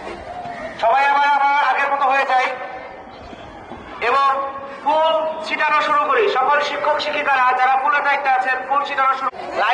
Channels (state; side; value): identical; both; correlation 1.00